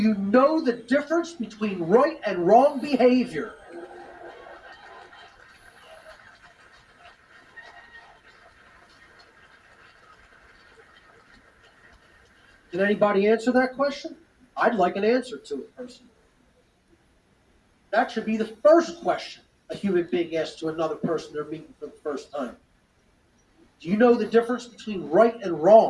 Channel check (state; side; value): identical; both; correlation 1.00